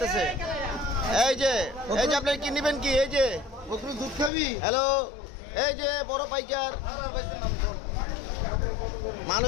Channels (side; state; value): right; drops out; at 4.3 s